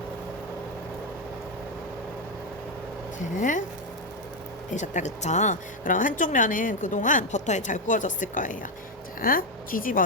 자, 되셨다 그쵸? 그럼 한쪽 면은 그동안 버터에 잘 구워졌을 거예요. 자,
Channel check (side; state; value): both; normal; correlation 0.05